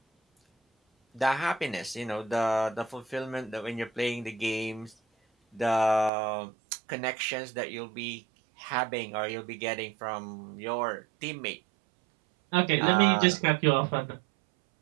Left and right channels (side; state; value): left; drops out; at 6.1 s